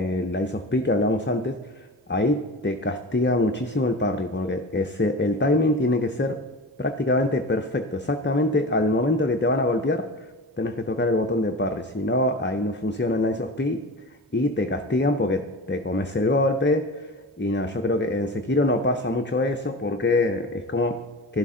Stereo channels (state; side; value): normal; both; correlation 0.31